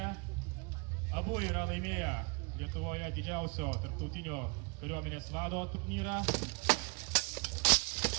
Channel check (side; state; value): left; quieter; 30.5 dB